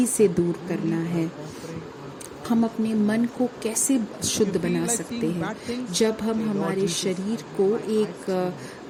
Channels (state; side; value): identical; both; correlation 1.00